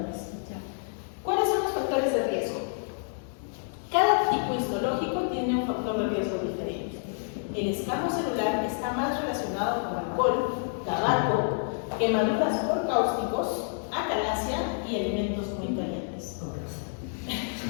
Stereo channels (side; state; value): right; silent; digital silence